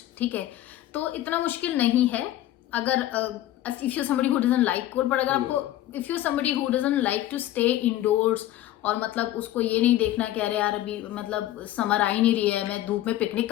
ठीक है, तो इतना मुश्किल नहीं है। अगर if you somebody who doesn't like cold, पर अगर आपको if you somebody who doesn't like to stay indoors और मतलब उसको ये नहीं देखना कि अरे यार अभी मतलब समर आ ही नहीं रही है, मैं धूप में पिकनिक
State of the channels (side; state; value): right; quieter; 14.0 dB